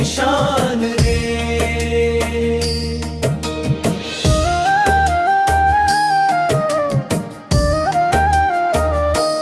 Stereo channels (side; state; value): both; identical; correlation 1.00